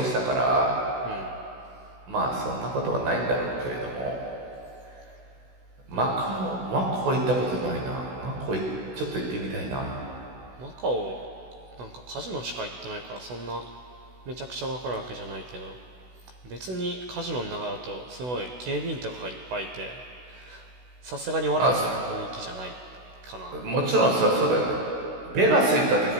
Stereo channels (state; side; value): late; left; 16 ms